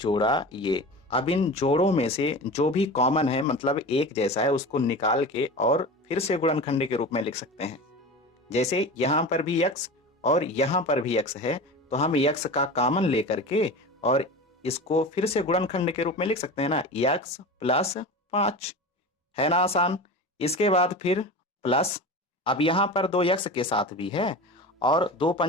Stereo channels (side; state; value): both; normal; correlation 0.31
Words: ये। अब इन जोड़ों में से जो भी कॉमन है, मतलब एक जैसा है, उसको निकाल के और फिर से गुणनखंड के रूप में लिख सकते हैं। जैसे यहां पर भी x और यहां पर भी x है, तो हम x का कॉमन लेकर के और इसको फिर से गुणनखंड के रूप में लिख सकते हैं ना, x प्लस 5, है ना आसान। इसके बाद फिर प्लस, अब यहां पर 2x के साथ भी है और 2